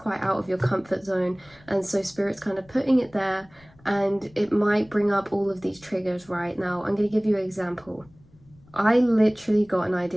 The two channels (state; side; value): noise; left; rumble, 28 dB below the sound